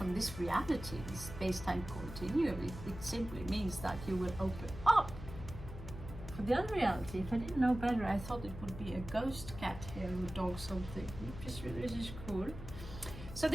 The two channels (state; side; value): noise; left; hum, 11 dB below the sound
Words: this reality, this space-time continuum. It simply means that you will open up for the other reality. If I didn't know better, I thought it would be a ghost cat here or dog something, which is cool. So